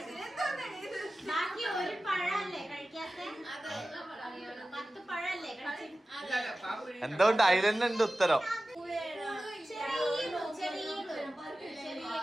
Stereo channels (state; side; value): normal; both; correlation 0.95